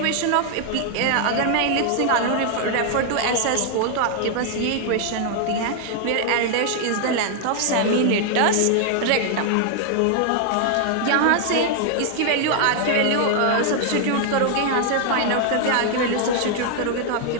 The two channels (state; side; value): different; both; correlation 0.00